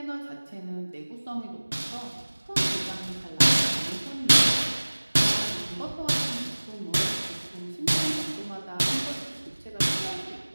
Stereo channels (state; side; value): inverted; both; correlation -1.00